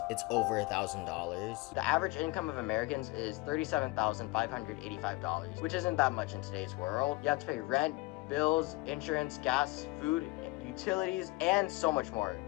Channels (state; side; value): quieter; right; 23.0 dB